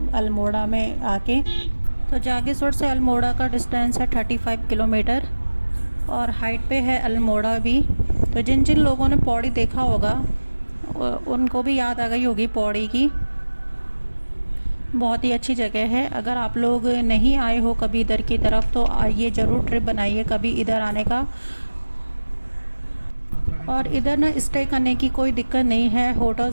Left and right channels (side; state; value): both; inverted; correlation -1.00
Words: अल्मोड़ा में आके। तो जागेश्वर से अल्मोड़ा का डिस्टेंस है 35 किलोमीटर और हाइट पे है अल्मोड़ा भी। तो जिन जिन लोगों ने पौड़ी देखा होगा उनको भी याद आ गई होगी पौड़ी की। बहुत ही अच्छी जगह है। अगर आप लोग नहीं आए हो कभी इधर की तरफ तो आइए, ज़रूर ट्रिप बनाइए कभी इधर आने का। और इधर ना स्टे करने की कोई दिक्कत नहीं है,